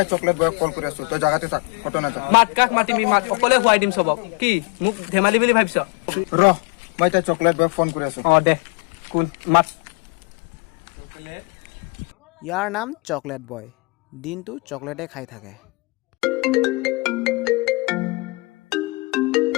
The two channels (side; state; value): right; quieter; 28.5 dB